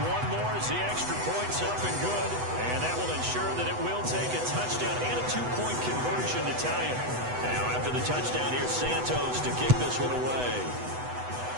one more as the extra point's up and good, and that will ensure that it will take a touchdown and a 2-point conversion to tie it. Now after the touchdown, here's Santos to kick this one away.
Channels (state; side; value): late; left; 8.0 ms